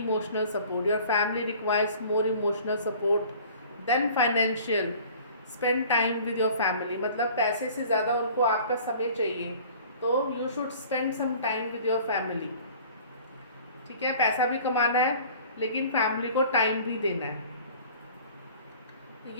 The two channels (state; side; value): inverted; both; correlation -0.48